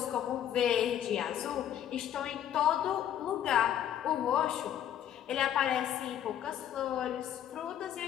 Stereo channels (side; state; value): right; quieter; 10.4 dB